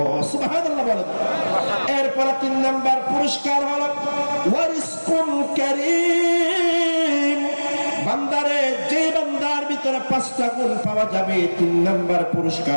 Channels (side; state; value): both; inverted; correlation -1.00